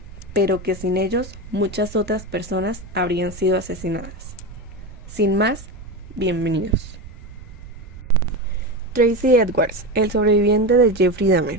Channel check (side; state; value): right; noise; rumble, 16 dB below the sound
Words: pero que sin ellos muchas otras personas habrían sido asesinadas. Sin más, bienvenidos. Tracy Edwards, el sobreviviente de Jeffrey